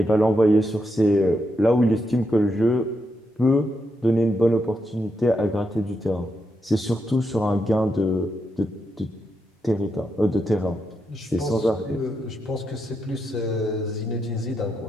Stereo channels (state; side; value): normal; both; correlation 0.83